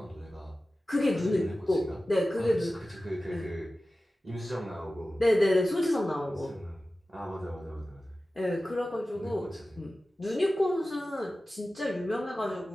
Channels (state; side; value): normal; both; correlation 0.95